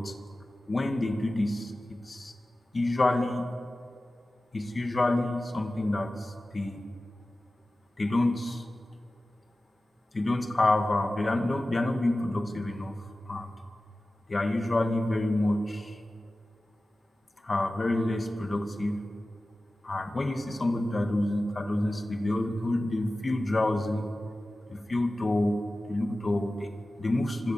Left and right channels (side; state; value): both; normal; correlation 0.96